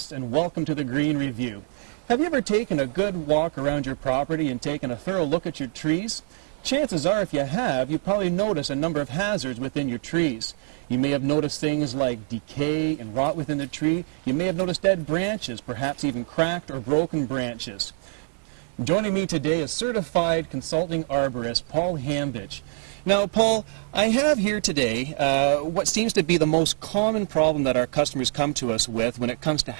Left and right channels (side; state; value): left; silent; 62 dB below the other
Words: and welcome to the Green Review. Have you ever taken a good walk around your property and taken a thorough look at your trees? Chances are, if you have, you probably notice a number of hazards within your trees. You may have noticed things like decay and rot within the tree. You may have noticed dead branches, perhaps even cracked or broken branches. Joining me today is Certified Consulting Arborist Paul Hambidge. Now, Paul, I have here today what seems to be the most common problem that our customers come to us with when it comes to